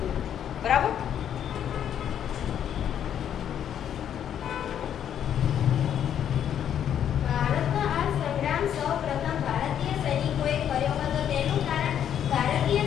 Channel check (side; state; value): right; quieter; 9.5 dB